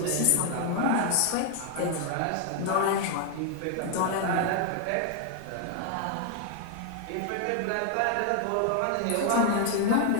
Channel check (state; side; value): different; both; correlation 0.00